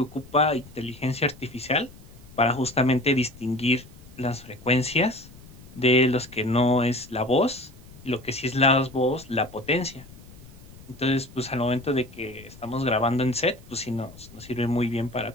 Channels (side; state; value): left; noise; rumble, 20 dB below the sound